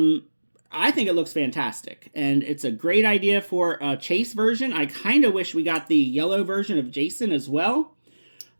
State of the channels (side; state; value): both; inverted; correlation -1.00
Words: I think it looks fantastic, and it's a great idea for a Chase version. I kind of wish we got the yellow version of Jason as well.